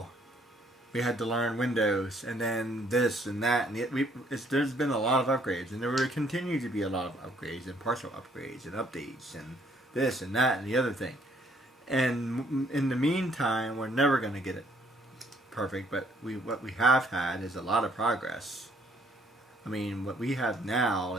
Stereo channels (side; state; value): both; normal; correlation 0.66